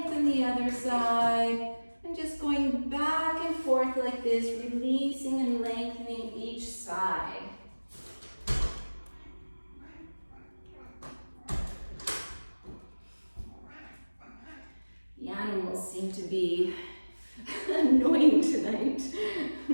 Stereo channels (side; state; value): both; inverted; correlation -1.00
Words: the other side, and just going back and forth like this, releasing and lengthening each side. The animals seem to be annoying tonight.